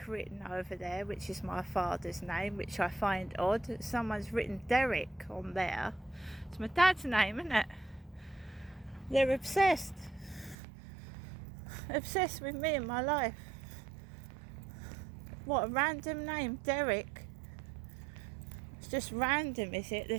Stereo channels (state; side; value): drops out; left; at 10.6 s